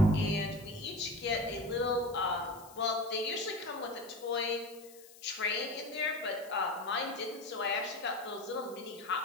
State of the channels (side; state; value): left; noise; hiss, 21 dB below the sound